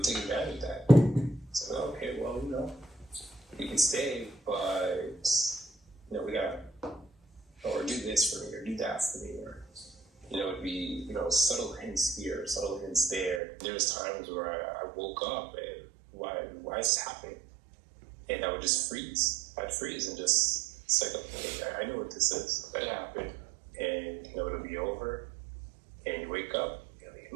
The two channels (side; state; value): left; drops out; at 13.4 s